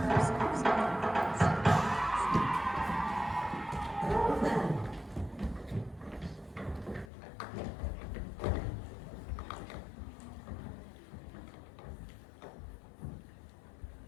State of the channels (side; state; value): right; drops out; at 7.1 s